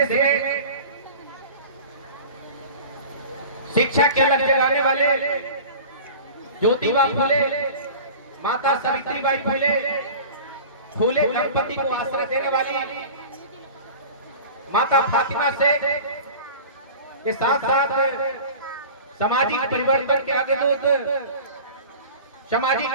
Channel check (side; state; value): both; inverted; correlation -0.38